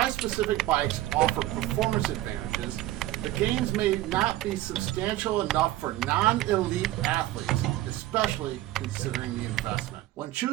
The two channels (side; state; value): left; quieter; 15.6 dB